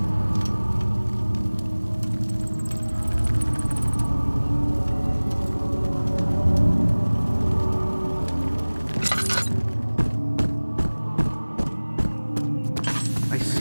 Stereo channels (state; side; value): inverted; both; correlation -1.00